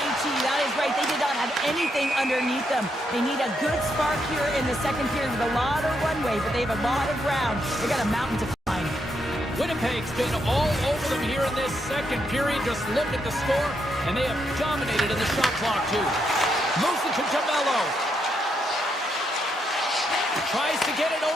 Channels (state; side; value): normal; both; correlation 0.79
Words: that is right. They did not have anything underneath them. They need a good spark here in the second period with a lot of runway, but they have a lot of ground. They got a mountain to climb. Winnipeg's been all over them here in this second period. Just look at the score, and they have dominated in the shot clock, too. Moves it to Jamello. Tries to get it